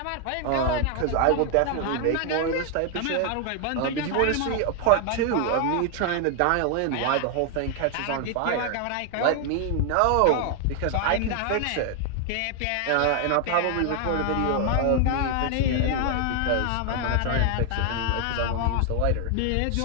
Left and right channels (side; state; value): both; different; correlation 0.00